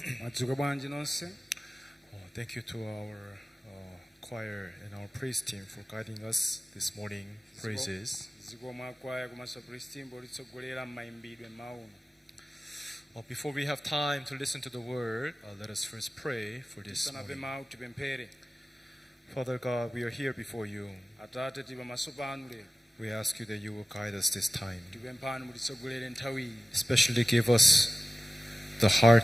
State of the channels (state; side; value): normal; both; correlation 0.95